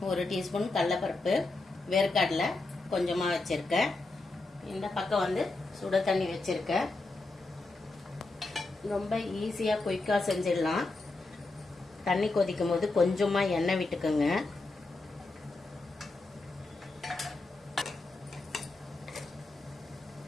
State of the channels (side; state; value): right; quieter; 3.2 dB